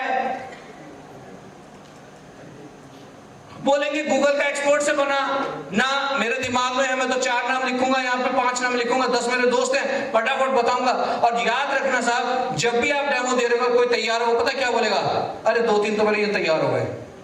बोलेंगे गूगल का एक्सपोर्ट से बना ना, मेरे दिमाग में है, मैं तो 4 नाम लिखूंगा, यहाँ पे 5 नाम लिखूंगा, 10 मेरे दोस्त हैं, फटाफट बताऊंगा। और याद रखना साहब, जब भी आप डेमो दे रहे हो, कोई तैयार हो, पता क्या बोलेगा, अरे 2-3 तो मेरे ये तैयार हो गए,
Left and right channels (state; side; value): identical; both; correlation 1.00